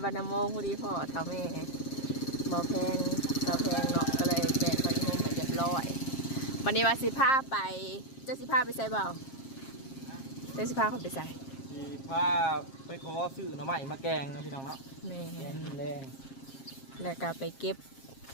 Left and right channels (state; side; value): late; right; 7.5 ms